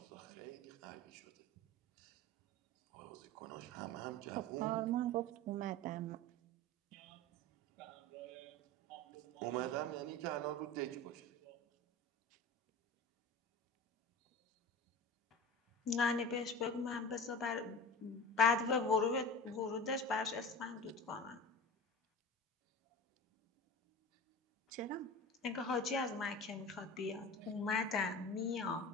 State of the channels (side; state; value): both; normal; correlation 0.33